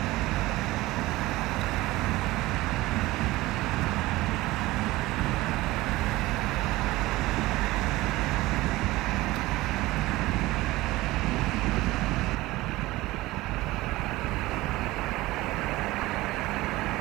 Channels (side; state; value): left; quieter; 18.8 dB